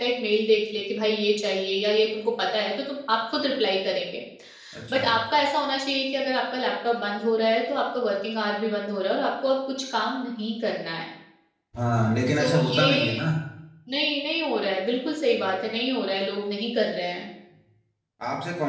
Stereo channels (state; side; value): identical; both; correlation 1.00